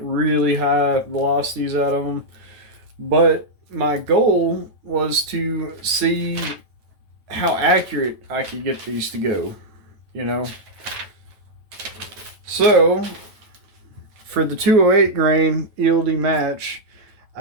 high velocities out of them. But my goal was to see how accurate I could get these to go, you know. So for the 208 grain ELD match,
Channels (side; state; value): left; late; 9.1 ms